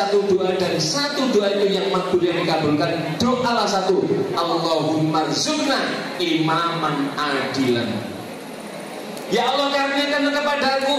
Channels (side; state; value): both; identical; correlation 1.00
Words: doa dan satu doa itu yang makbul, yang dikabulkan, doalah satu, Allahumma rzuqna imaman adilan. Ya Allah, karuniakan